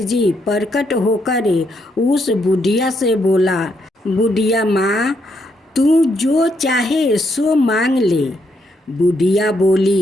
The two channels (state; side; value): normal; both; correlation 0.76